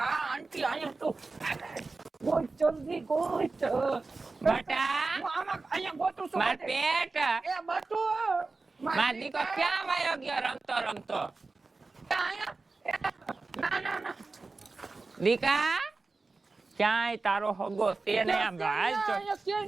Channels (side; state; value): left; quieter; 3.8 dB